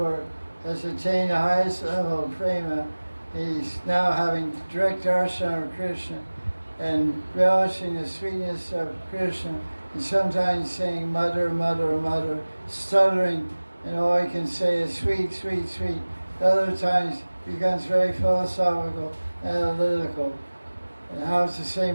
has attained the highest level of prema? He's now having direct darshan of Krishna and relishing the sweetness of Krishna, and sometimes saying mother, mother, mother, stuttering, and all he can say is sweet, sweet, sweet. Other times he becomes very philosophical, analytical. And how does the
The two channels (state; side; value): inverted; both; correlation -1.00